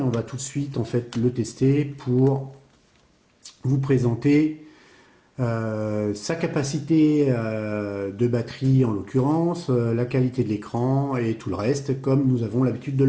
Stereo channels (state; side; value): identical; both; correlation 1.00